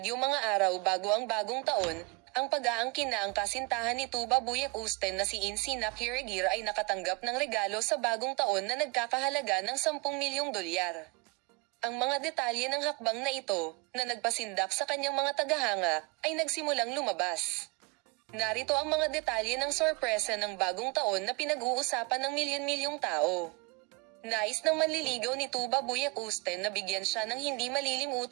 mga araw bago ang bagong taon. Ang pag-aangkin na ang kasintahan ni Tagbabuyak Usten na si Insinak Hiragir ay nakatanggap ng regalo sa bagong taon na nagkakahalaga ng 10 milyong dolyar. Ang mga detalye ng hakbang na ito, na nagpasindak sa kanyang mga tagahanga, ay nagsimulang lumabas. Narito ang mga detalye ng sorpresa ng bagong taon na pinag-uusapan ng milyon-milyong tao. Nais ng manliligaw ni Tagbabuyak Usten na bigyan siya ng hindi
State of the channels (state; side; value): quieter; left; 28.4 dB